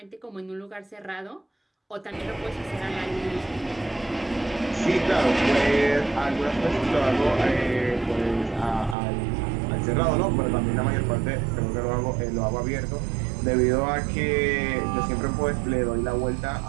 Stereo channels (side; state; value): left; drops out; at 9.0 s